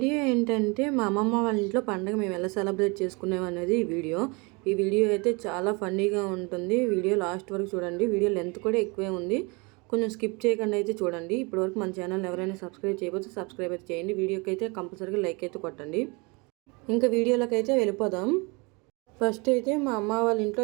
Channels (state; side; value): quieter; left; 28.7 dB